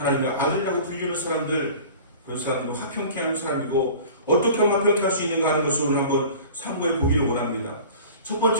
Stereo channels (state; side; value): inverted; both; correlation -0.41